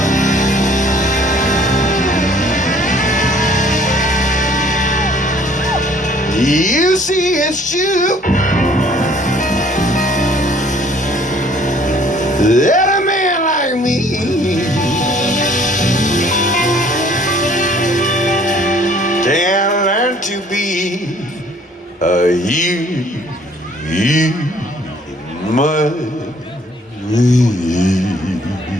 You see, it's true that a man like me can learn to be a human.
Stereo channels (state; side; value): normal; both; correlation 0.58